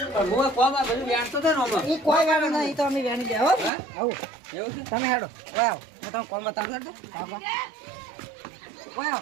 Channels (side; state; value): left; drops out; at 3.7 s